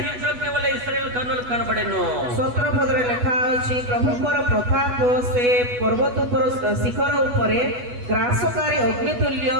వలె ఇశ్రాయేలు కన్నులు కనబడెను 17 ପଦରେ ଲେଖା ଅଛି ପ୍ରଭୁଙ୍କର ପ୍ରତାପ ସେ ପର୍ବତ ଉପର ଶିଖର ଉପରେ ଗ୍ରାସକାରୀ ଅଗ୍ନିତୁଲ୍ୟ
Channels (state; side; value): late; left; 8.2 ms